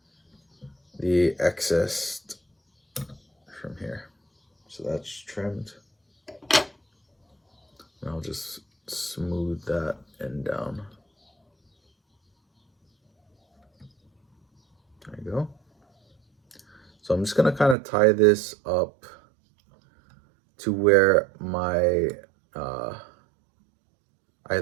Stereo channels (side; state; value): left; drops out; at 17.8 s